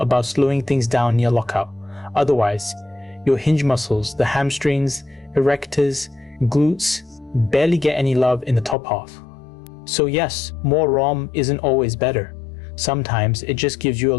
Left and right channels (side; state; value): right; drops out; at 8.8 s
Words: slowing things down near lockout. Otherwise, your hinge muscles, the hamstrings, erectors, glutes, barely get any love in the top half. So yes, more ROM isn't always better. Sometimes it just gives you a